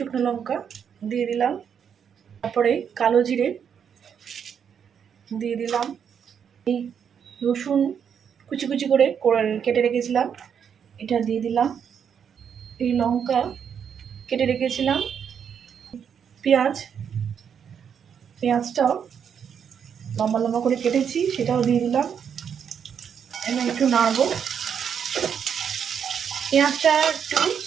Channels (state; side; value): quieter; left; 7.7 dB